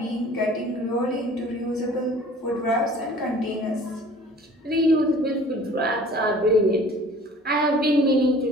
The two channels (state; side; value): normal; both; correlation 0.48